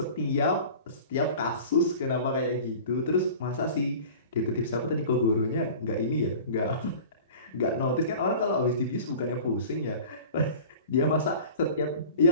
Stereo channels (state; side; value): inverted; both; correlation -0.40